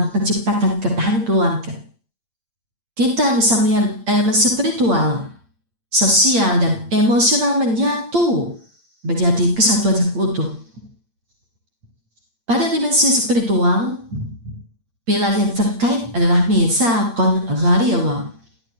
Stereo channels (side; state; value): left; late; 8.7 ms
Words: menciptakan ketahanan keluarga. Kita bisa melihat elemen spiritual, sosial, dan emosional menyatu menjadi kesatuan yang utuh. Pada dimensi spiritual, pilar yang terkait adalah mitsaqun ghalidh